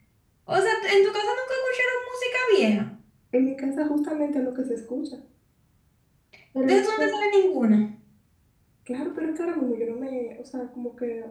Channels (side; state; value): both; identical; correlation 1.00